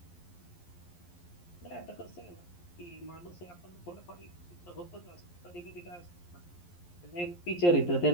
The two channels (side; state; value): right; late; 11 ms